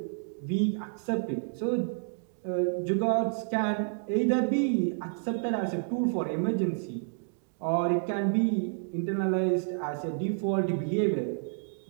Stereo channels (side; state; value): left; silent; digital silence